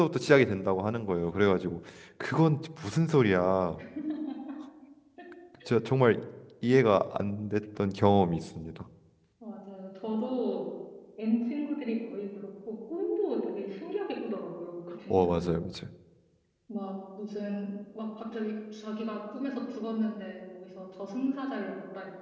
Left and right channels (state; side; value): identical; both; correlation 1.00